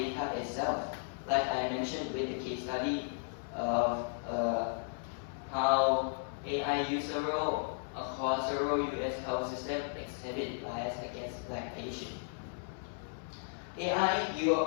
itself. Like I mentioned with the case study of how AI use across several US health systems exhibit bias against Black patients. AI, you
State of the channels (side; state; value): right; silent; 54 dB below the other